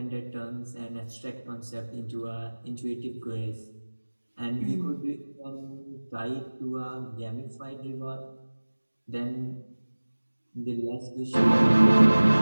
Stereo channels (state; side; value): inverted; both; correlation -1.00